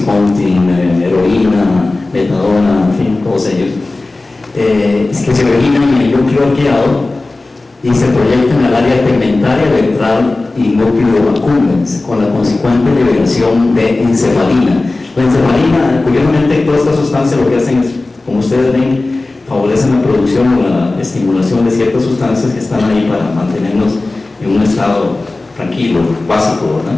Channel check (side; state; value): right; quieter; 3.2 dB